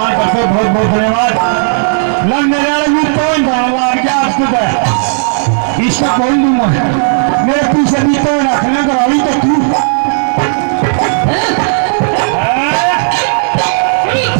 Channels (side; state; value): left; silent; digital silence